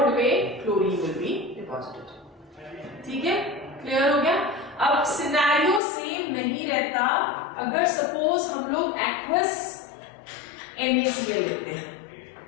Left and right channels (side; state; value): right; drops out; at 5.8 s